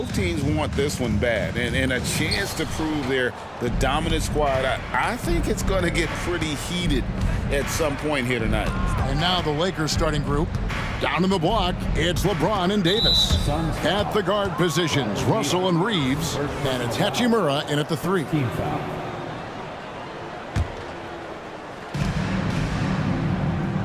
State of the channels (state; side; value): identical; both; correlation 1.00